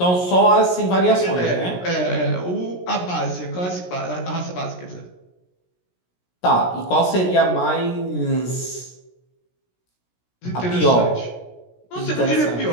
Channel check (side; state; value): right; late; 17 ms